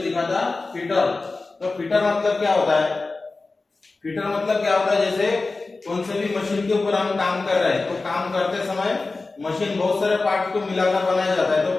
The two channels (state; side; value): quieter; right; 3.6 dB